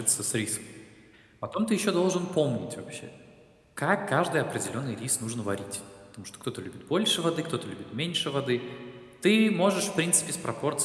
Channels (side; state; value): both; identical; correlation 1.00